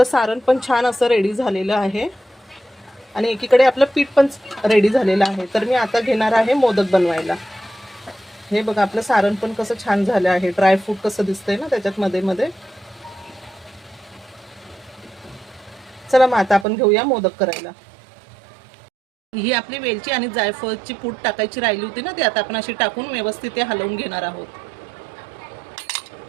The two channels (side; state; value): left; drops out; at 16.7 s